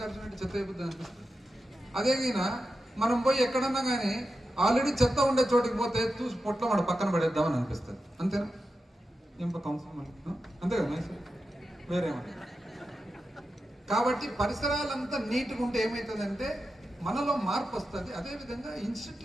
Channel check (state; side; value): normal; both; correlation 0.90